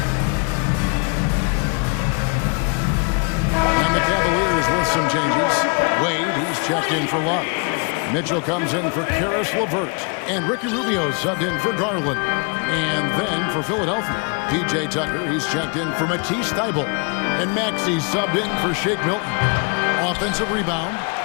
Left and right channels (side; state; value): right; quieter; 35.3 dB